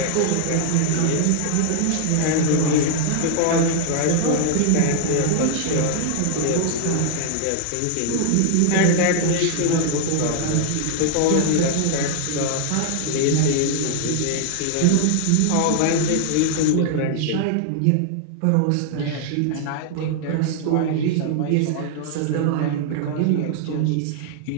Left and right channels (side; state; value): both; different; correlation 0.00